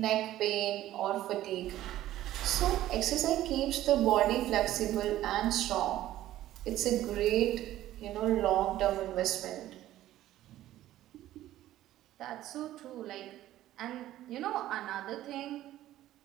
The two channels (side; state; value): left; quieter; 14.0 dB